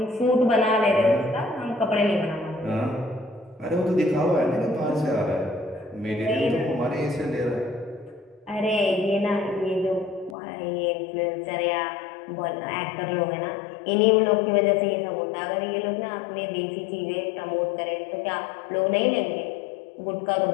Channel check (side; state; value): right; drops out; at 10.4 s